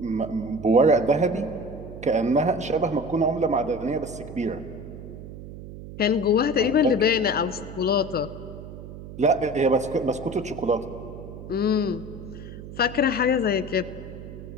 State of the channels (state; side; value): noise; right; hum, 12 dB below the sound